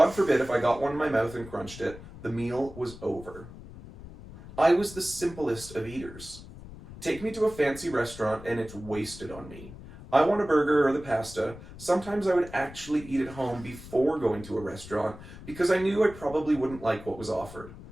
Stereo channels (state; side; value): noise; left; rumble, 16 dB below the sound